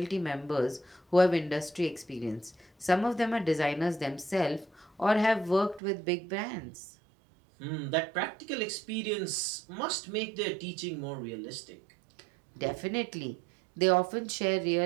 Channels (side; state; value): left; drops out; at 5.8 s